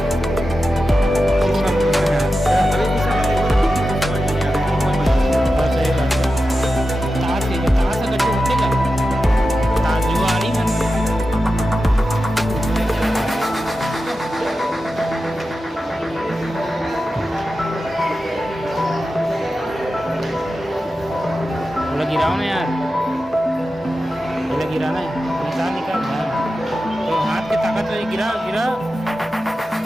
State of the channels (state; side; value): normal; both; correlation 0.92